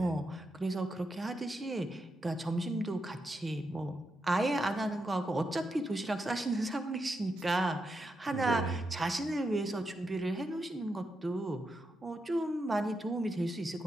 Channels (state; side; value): normal; both; correlation 0.85